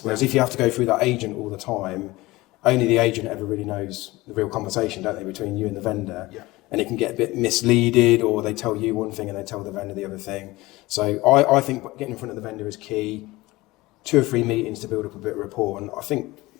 Whereas if you have to go through that agent all the time, only the agent ever really knows the real conversation, don't they, between you and the vendor? Yeah. And it can get a bit misleaded, or they tell you one thing and they tell the vendor the other thing. So I think getting in front of the vendor is key. 2 or 3 meetings to build up a bit of rapport, and I think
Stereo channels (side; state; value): right; quieter; 20.1 dB